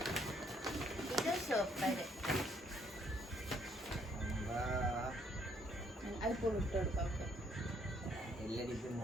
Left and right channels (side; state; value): both; normal; correlation 0.67